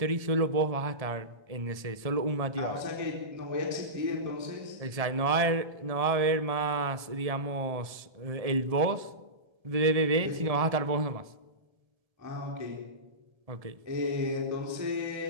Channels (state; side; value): late; left; 1.7 ms